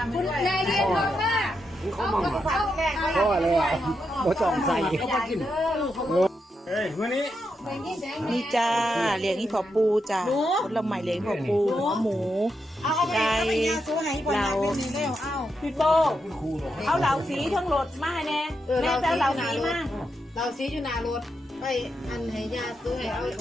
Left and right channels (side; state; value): both; normal; correlation 0.84